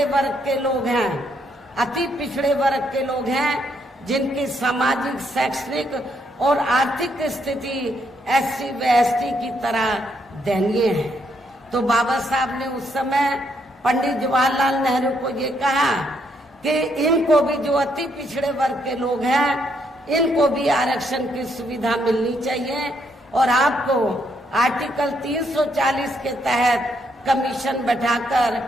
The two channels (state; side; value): normal; both; correlation 0.74